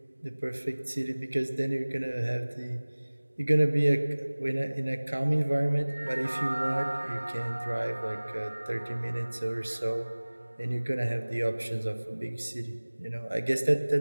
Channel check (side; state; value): both; inverted; correlation -1.00